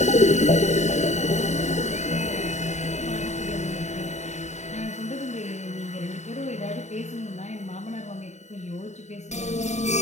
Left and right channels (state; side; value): late; right; 0.33 ms